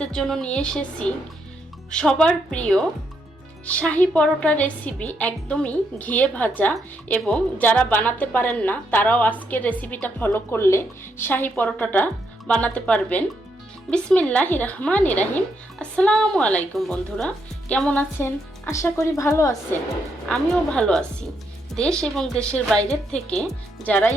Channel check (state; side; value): normal; both; correlation 0.78